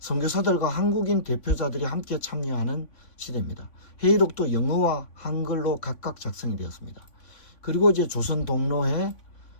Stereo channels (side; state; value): right; late; 3.5 ms